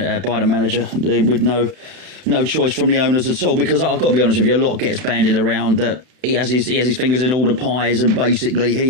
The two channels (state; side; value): late; left; 31 ms